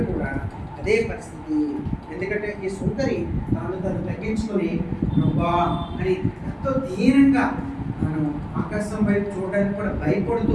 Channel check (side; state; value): both; identical; correlation 1.00